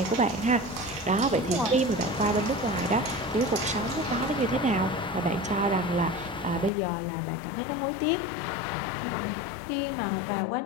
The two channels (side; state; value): right; drops out; at 6.7 s